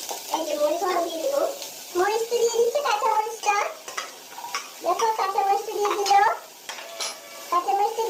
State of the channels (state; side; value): identical; both; correlation 1.00